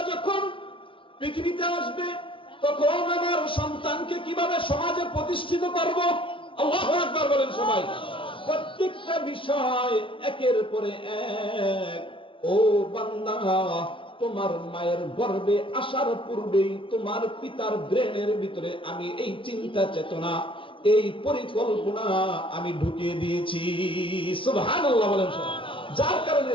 যখন পৃথিবীতে আসবে তখন আমার সন্তানকে কিভাবে সমাজে প্রতিষ্ঠিত করব। আল্লাহু আকবার বলেন সবাই। প্রত্যেকটা বিষয় একের পরে এক। ও বান্দা, তোমার মায়ের গর্ভে আসার পূর্বেই তোমার পিতার ব্রেনের ভিতরে আমি এই চিন্তা চেতনা, এই পরিকল্পনা আমি ঢুকিয়ে দিয়েছি। সুবহানাল্লাহ বলেন। যার কারণে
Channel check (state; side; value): late; right; 0.25 ms